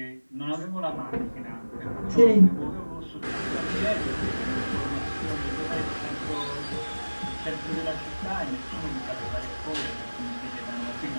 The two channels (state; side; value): inverted; both; correlation -1.00